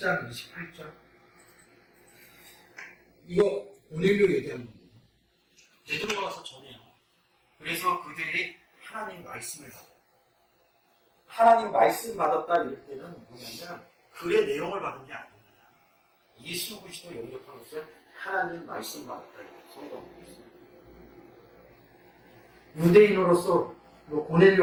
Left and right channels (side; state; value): both; identical; correlation 1.00